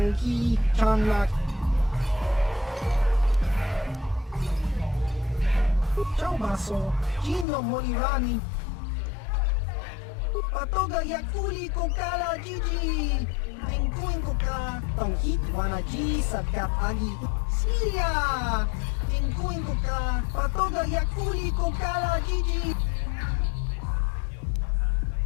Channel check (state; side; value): drops out; right; at 7.5 s